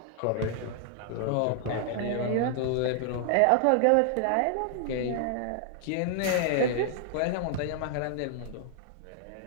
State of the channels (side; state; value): both; different; correlation -0.01